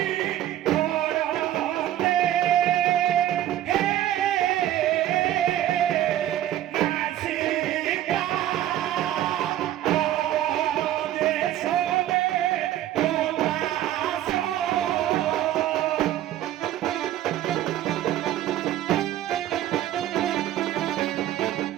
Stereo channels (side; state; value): left; quieter; 12.8 dB